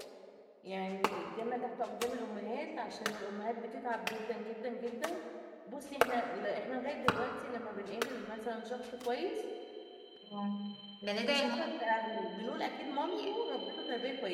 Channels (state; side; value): identical; both; correlation 1.00